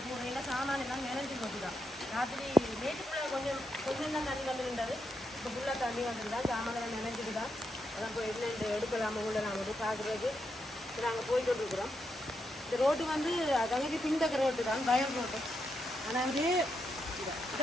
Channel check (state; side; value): normal; both; correlation 0.82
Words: சாமான் எல்லாம் நினைஞ்சு போட்டுதான். ராத்திரி நேற்றுக்குள்ள கொஞ்சம் தான் தண்ணி வந்துருந்தது. இப்போ ஃபுல்லாக தண்ணி வந்துருதான். சாமான் நினைஞ்சிட்டு தான். அதான் போய் என்ன எடுக்கலாமா உள்ள நாங்கள் பார்க்குறதுக்கு நாங்கள் போயிட்டு இருக்கிறோம். இந்த ரோட்டு வந்து தங்கச்சி பின்தக்க ரோட்டு தான், பயம் ரோட்டு. ஆனால் வந்து